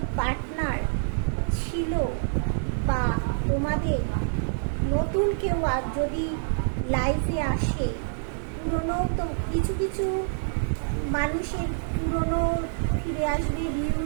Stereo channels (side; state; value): left; silent; digital silence